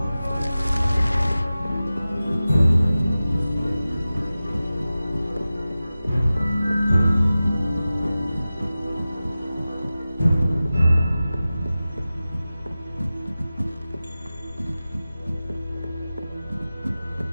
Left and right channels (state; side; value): inverted; both; correlation -0.95